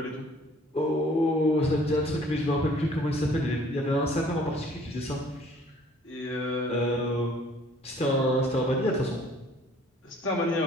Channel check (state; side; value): normal; both; correlation 0.56